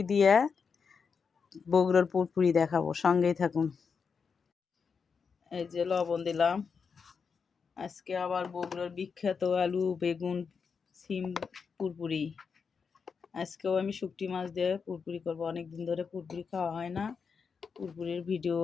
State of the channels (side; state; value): right; quieter; 5.7 dB